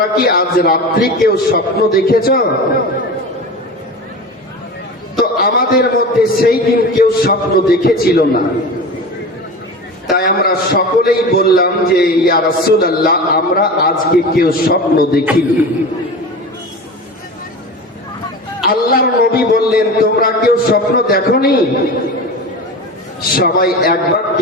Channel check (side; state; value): both; normal; correlation 0.31